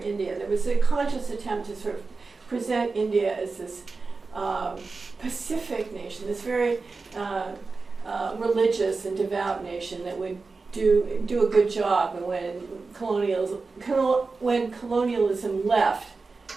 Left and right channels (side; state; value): left; quieter; 4.1 dB